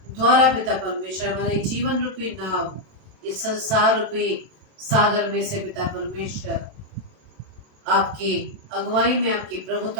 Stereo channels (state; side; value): late; left; 27 ms